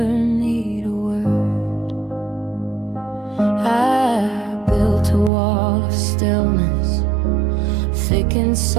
need a word. I built a wall of stillness, thick and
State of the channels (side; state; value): left; drops out; at 5.3 s